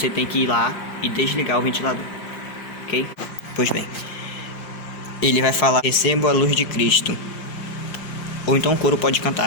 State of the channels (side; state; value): right; late; 5.6 ms